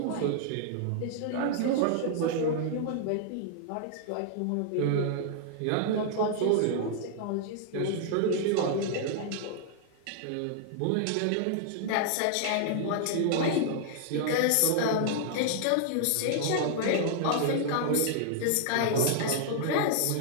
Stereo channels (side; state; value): both; different; correlation 0.00